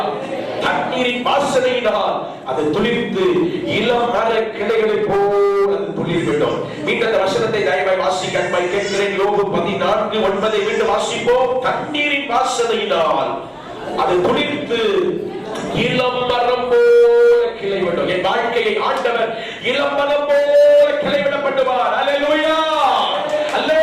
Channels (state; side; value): identical; both; correlation 1.00